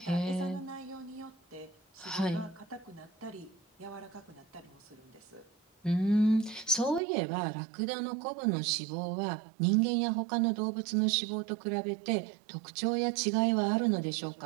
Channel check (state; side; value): drops out; left; at 7.0 s